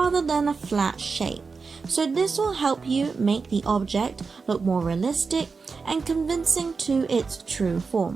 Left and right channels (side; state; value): left; quieter; 4.7 dB